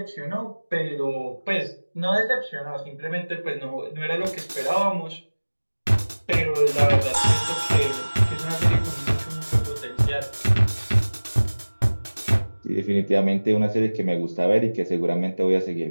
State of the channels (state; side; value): inverted; both; correlation -1.00